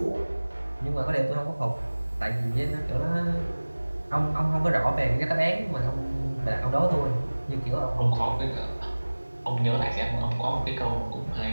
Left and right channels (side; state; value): both; inverted; correlation -1.00